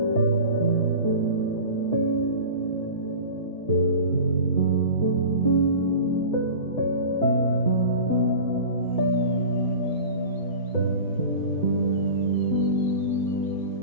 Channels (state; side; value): inverted; both; correlation -0.36